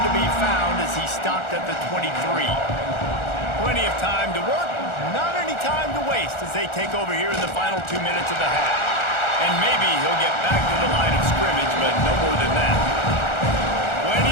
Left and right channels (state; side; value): late; right; 1.4 ms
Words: to be found as he stopped at the 23. Plenty of time to work, not any time to waste as they take over here in the final 2 minutes of the half. And maybe he'll get back to the line of scrimmage, but no more than that.